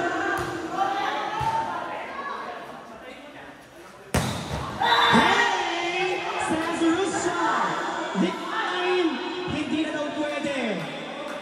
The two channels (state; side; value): identical; both; correlation 1.00